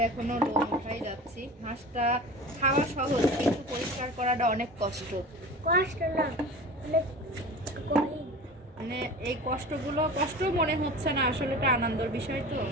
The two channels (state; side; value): normal; both; correlation 0.35